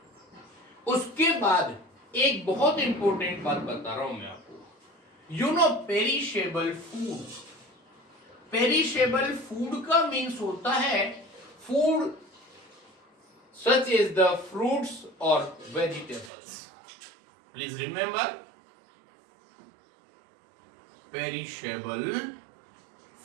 उसके बाद एक बहुत इंपॉर्टेंट बात बता रहा हूं मैं आपको, you know perishable food. Perishable food का मीन्स होता है food such as the fruits और vegetables. Please remember, perishable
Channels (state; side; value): drops out; left; at 16.3 s